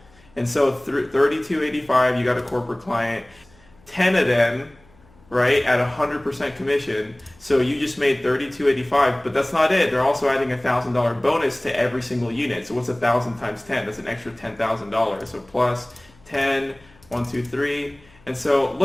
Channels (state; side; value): noise; left; hum, 29 dB below the sound